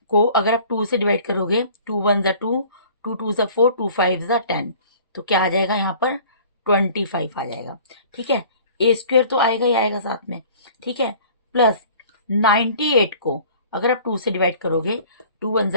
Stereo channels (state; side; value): inverted; both; correlation -0.48